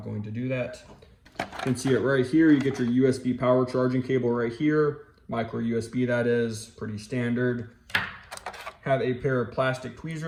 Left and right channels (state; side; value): identical; both; correlation 1.00